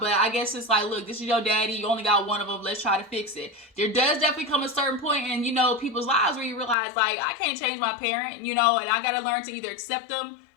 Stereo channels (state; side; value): drops out; right; at 6.8 s